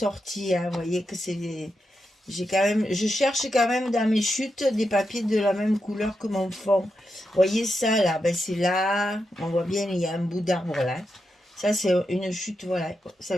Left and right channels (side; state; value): both; normal; correlation 0.86